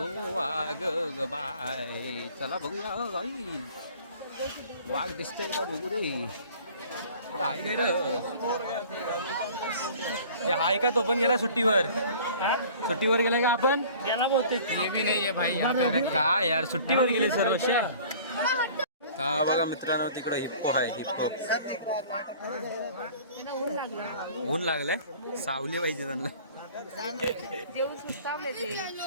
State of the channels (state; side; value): inverted; both; correlation -0.48